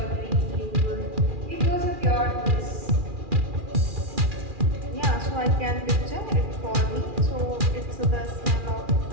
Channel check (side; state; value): left; late; 2.4 ms